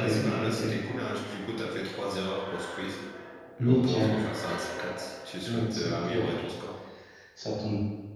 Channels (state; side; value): identical; both; correlation 1.00